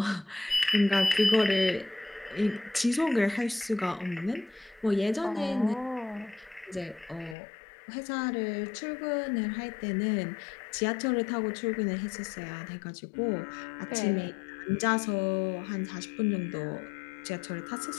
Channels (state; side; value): drops out; right; at 7.4 s